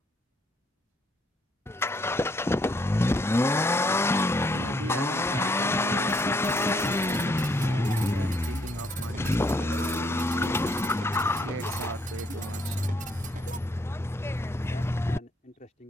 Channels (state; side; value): normal; both; correlation 0.70